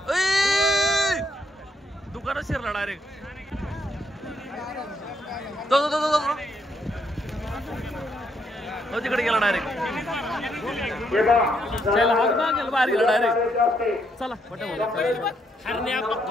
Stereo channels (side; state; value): both; normal; correlation 0.74